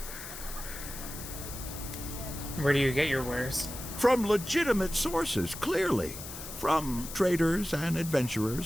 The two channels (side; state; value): left; noise; hiss, 10 dB below the sound